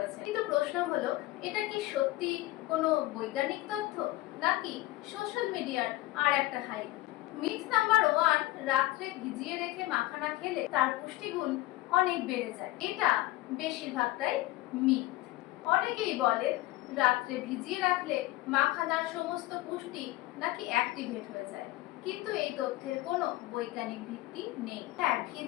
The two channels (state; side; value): quieter; right; 17.6 dB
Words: কিন্তু প্রশ্ন হলো, এটা কি সত্যি কোনো বৈজ্ঞানিক তথ্য নাকি সোশ্যাল মিডিয়ার আর একটা হাইপ? মিথ নাম্বার 1, রাত্রে ভিজিয়ে রেখে মাখানা খেলে তার পুষ্টিগুণ অনেক বেড়ে যায়। এটা বেশিরভাগটাই মিথ। অনেকেই বলেন রাত্রে ভিজিয়ে রাখলে মাখানার সমস্ত পুষ্টি নাকি অ্যাক্টিভেট হয়ে যায়, কিন্তু এই তথ্যের কোনো বৈজ্ঞানিক ভিত্তি নেই। হ্যাঁ,